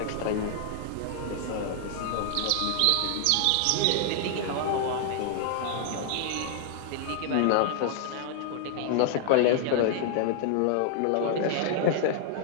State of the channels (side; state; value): both; different; correlation 0.00